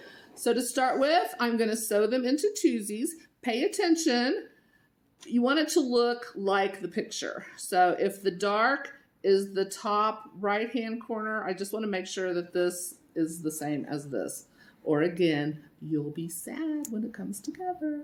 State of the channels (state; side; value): identical; both; correlation 1.00